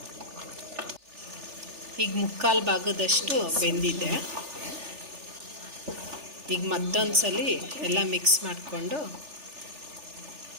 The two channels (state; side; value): late; left; 3.4 ms